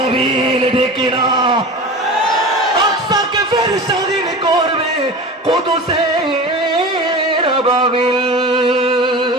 ডেকে না আকসাকে ফের স্বাধীন করবে কুদুসের আবাবিল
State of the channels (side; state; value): both; normal; correlation 0.32